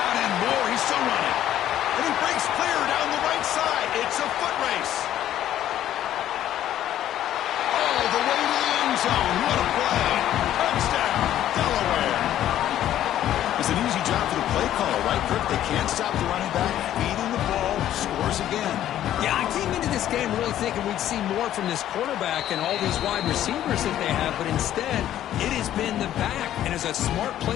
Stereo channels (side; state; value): right; quieter; 12.0 dB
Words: and more. He's still running. And he breaks clear down the right side. It's a foot race. All the way to the end zone. What a play. Touchdown, Delaware. It's an easy job for the play caller, right, Kirk? They can't stop the running back. Feeding the ball. Scores again. Yeah, I came into this game really thinking we'd see more from this quarterback and all these wide receivers that they have, but instead, it has been the back. And as a smart